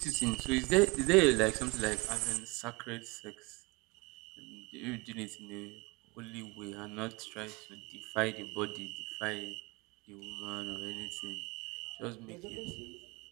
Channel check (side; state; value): left; quieter; 25.6 dB